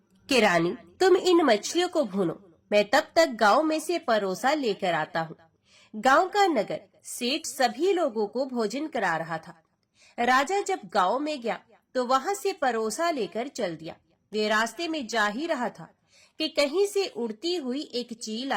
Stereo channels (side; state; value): both; identical; correlation 1.00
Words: कि रानी, तुम इन मछलियों को भूनो, मैं तब तक गांव में से परोसा लेकर आता हूँ। गांव का नगर सेठ सभी लोगों को भोजन करा रहा था। राजा जब गांव में गया तो वहां से परोसा लेकर चल दिया। वे रास्ते में जा ही रहा था कि कहीं से उड़ती हुई एक चील